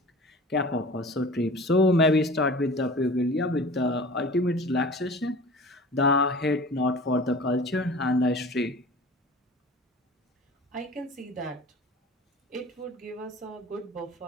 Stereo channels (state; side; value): normal; both; correlation 0.41